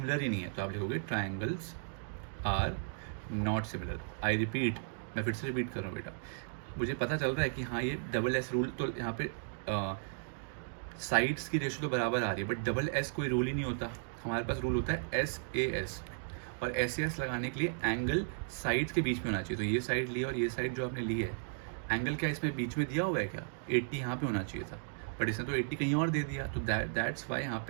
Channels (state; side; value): silent; left; digital silence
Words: ही नहीं है। तो आप लिखोगे triangles are not similar. I repeat, मैं फिर से रिपीट कर रहा हूँ बेटा, मुझे पता चल रहा है कि हाँ ये SS रूल, तो यहाँ पे साइड्स की रेशियो तो बराबर आ रही है, बट SS कोई रूल ही नहीं होता, हमारे पास रूल होता है SAS, और SAS लगाने के लिए एंगल साइड्स के बीच में होना चाहिए। तो ये साइड लिया और ये साइड जो आपने ली है, एंगल क्या इसमें बीच में दिया हुआ है क्या, 80 यहाँ पे होना चाहिए था, बट इसने तो 80 कहीं और दे दिया, तो दैट्स वाई यहाँ